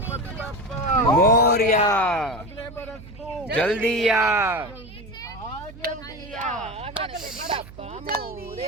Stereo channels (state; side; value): noise; right; hum, 17 dB below the sound